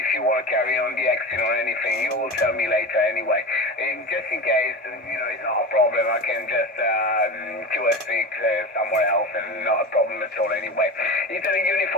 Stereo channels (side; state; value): both; normal; correlation 0.27